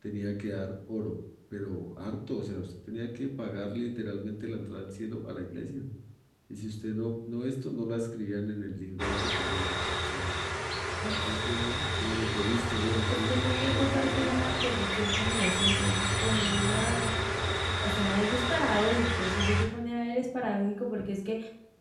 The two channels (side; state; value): both; identical; correlation 1.00